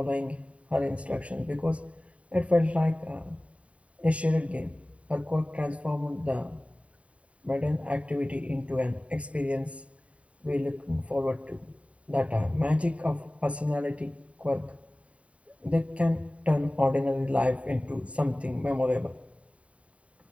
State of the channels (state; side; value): late; left; 0.065 ms